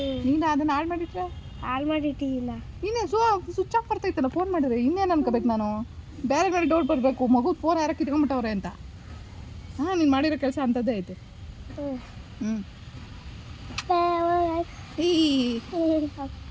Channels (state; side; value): identical; both; correlation 1.00